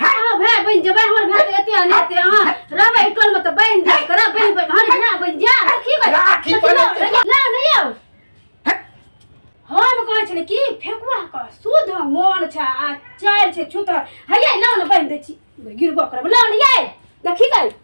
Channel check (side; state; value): both; inverted; correlation -1.00